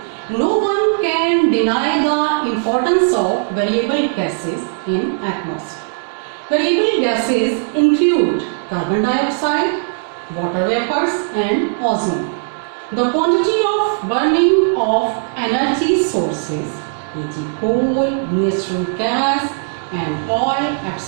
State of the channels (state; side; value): silent; left; digital silence